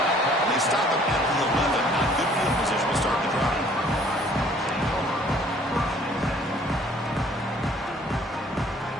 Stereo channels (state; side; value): normal; both; correlation 0.57